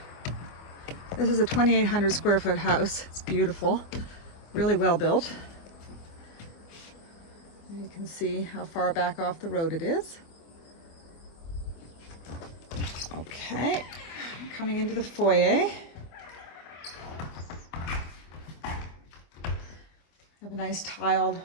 This is a 2,800 square foot house. It's beautiful, really well built. You can see how far back off the road it is. Okay, coming into the foyer. I have a nice tiled,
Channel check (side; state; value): right; late; 24 ms